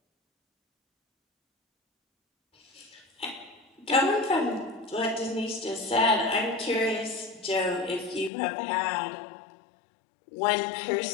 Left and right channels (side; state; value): right; drops out; at 8.3 s